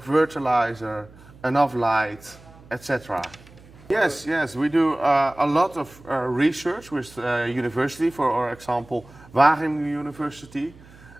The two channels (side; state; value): right; noise; hum, 23 dB below the sound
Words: fertilizer, enough light, etc. Yes, we do a lot of research with university, for example, Wageningen University,